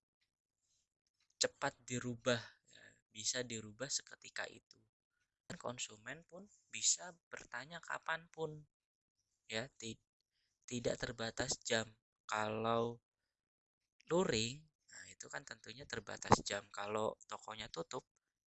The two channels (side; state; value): both; identical; correlation 1.00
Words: cepat dirubah, ya, bisa dirubah seketika itu. Dan konsumen pun bisa bertanya kapanpun, ya, tidak terbatas jam. Kalau luring, nah itu kan tentunya terbatas jam. Kalau tokonya tutup,